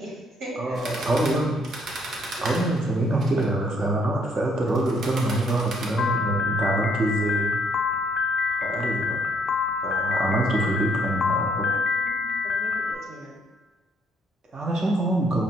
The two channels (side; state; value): both; normal; correlation 0.68